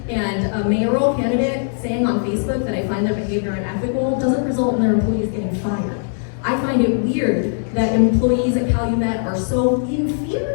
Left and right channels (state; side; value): silent; right; digital silence